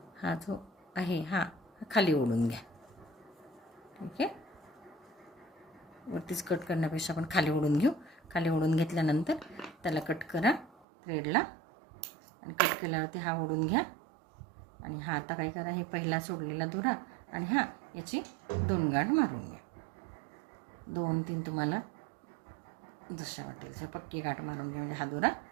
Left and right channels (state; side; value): drops out; left; at 10.7 s